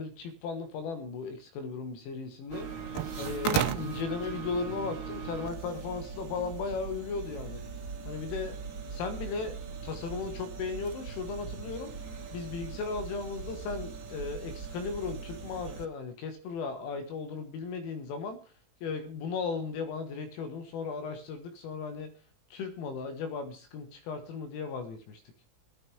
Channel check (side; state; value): right; late; 18 ms